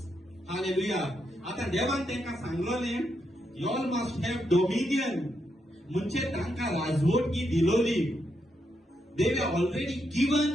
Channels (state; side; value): normal; both; correlation 0.81